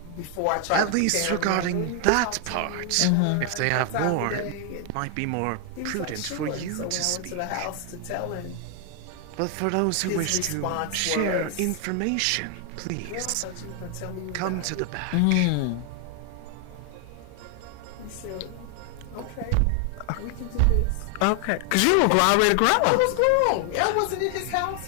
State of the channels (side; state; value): both; different; correlation 0.00